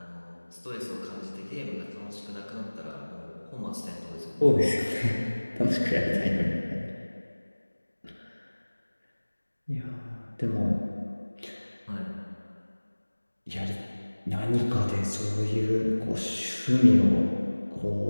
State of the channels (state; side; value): inverted; both; correlation -1.00